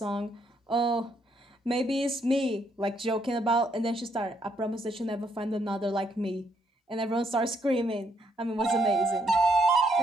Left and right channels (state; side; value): normal; both; correlation 0.72